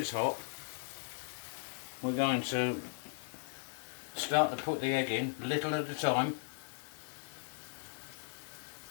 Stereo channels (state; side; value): silent; right; digital silence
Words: hot, we're going to start to put the egg in, little at a time.